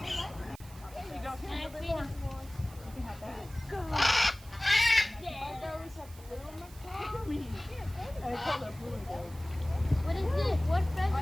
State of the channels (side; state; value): right; noise; hiss, 21 dB below the sound